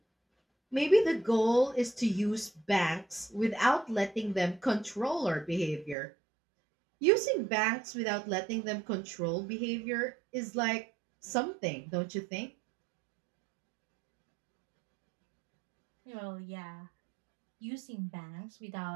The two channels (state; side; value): drops out; left; at 6.0 s